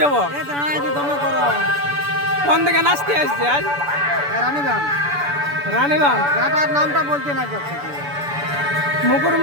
কোন দিকে নাচতে আসছে আজ? রানীগঞ্জ নামটা বলতে না যাচ্ছে।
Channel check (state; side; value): late; left; 6.9 ms